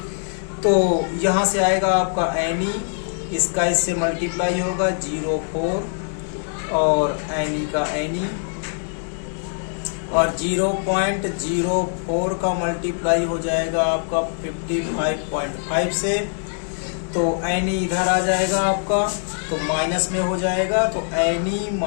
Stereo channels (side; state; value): right; silent; digital silence